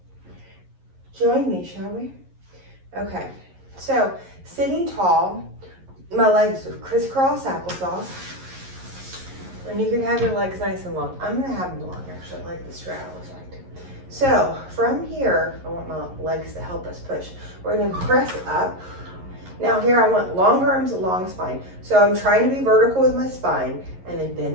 join me, shall we? Okay, so sitting tall, my legs are crisscross applesauce. And you can have your legs nice and long. I'm gonna have them long actually, like the straddle effect. So from here, I want my legs to help us push. We're gonna press up. Now here I want long arms, long spine. So I'm trying to be vertical with my spine and then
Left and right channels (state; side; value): late; left; 11 ms